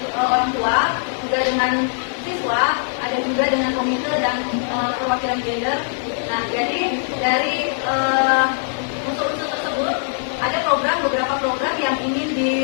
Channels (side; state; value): right; silent; digital silence